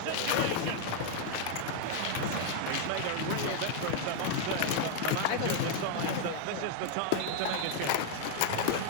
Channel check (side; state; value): both; different; correlation 0.00